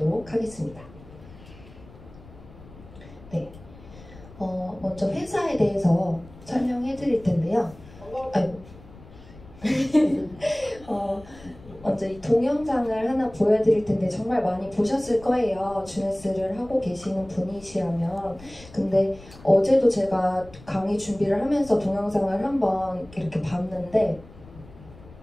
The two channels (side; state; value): left; noise; rumble, 20 dB below the sound